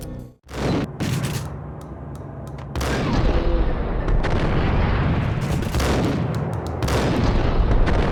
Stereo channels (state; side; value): identical; both; correlation 1.00